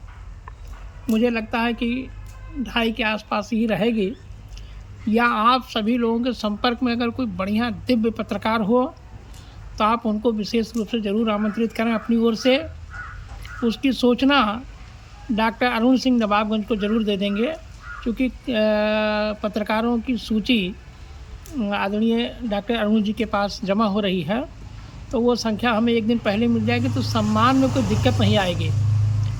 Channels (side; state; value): both; identical; correlation 1.00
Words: मुझे लगता है कि 250 के आसपास ही रहेगी। या आप सभी लोगों के संपर्क में अगर कोई बढ़िया दिव्य पत्रकार हो तो आप उनको विशेष रूप से ज़रूर आमंत्रित करें अपनी ओर से। उसकी सूचना डॉक्टर अरुण सिंह नवाबगंज को ज़रूर दे देंगे, क्योंकि पत्रकारों की सूची आदरणीय डॉक्टर अरुण जी के पास जमा हो रही है, तो वो संख्या हमें एक दिन पहले मिल जाएगी तो सम्मान में कोई दिक्कत नहीं आएगी।